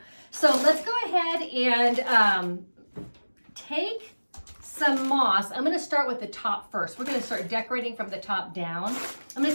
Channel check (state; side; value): inverted; both; correlation -1.00